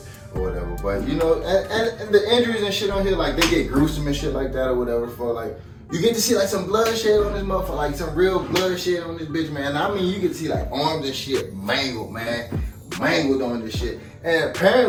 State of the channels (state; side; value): identical; both; correlation 1.00